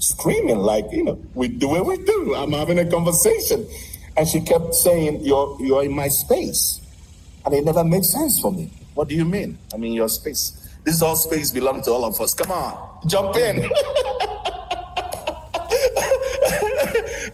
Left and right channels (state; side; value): identical; both; correlation 1.00